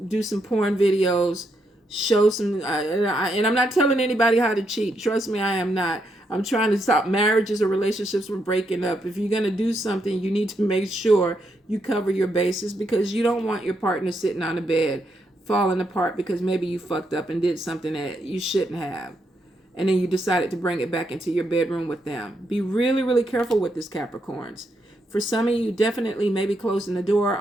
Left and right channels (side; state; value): both; normal; correlation 0.79